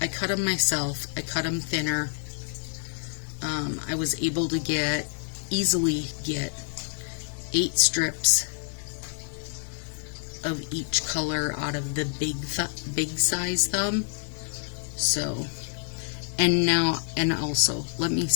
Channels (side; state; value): right; silent; 60 dB below the other